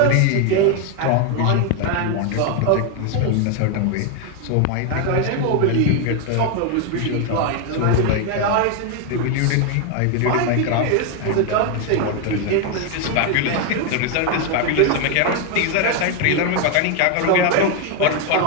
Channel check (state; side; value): different; both; correlation 0.01